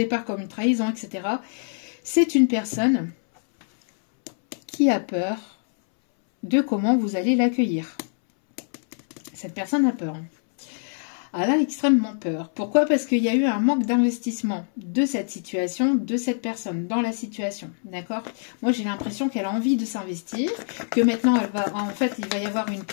comme une trahison, etc. C'est une personne qui a peur de comment vous allez l'accueillir. Cette personne a peur. Elle a extrêmement peur. Pourquoi? Parce qu'il y a eu un manque d'investissement de cette situation, de cette personne, dans la situation. D'accord? Moi, j'ai l'impression qu'elle a envie de s'investir, que maintenant, en fait, il va y avoir une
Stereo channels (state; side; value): silent; right; 62 dB below the other